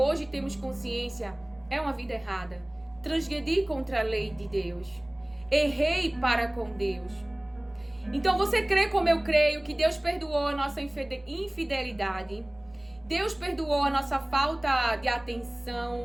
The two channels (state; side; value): noise; right; hum, 29 dB below the sound